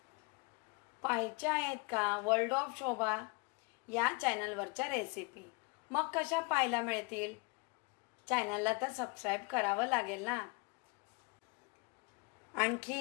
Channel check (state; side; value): quieter; right; 29.5 dB